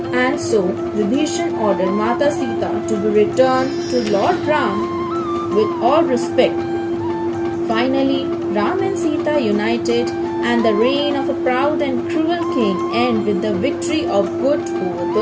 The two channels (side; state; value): both; identical; correlation 1.00